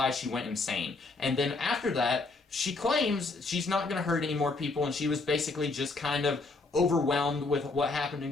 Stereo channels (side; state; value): right; quieter; 3.6 dB